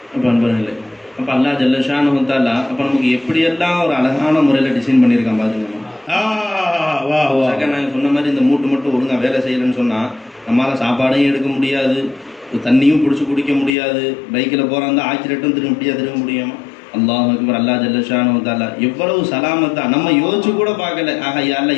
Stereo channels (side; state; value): right; drops out; at 13.8 s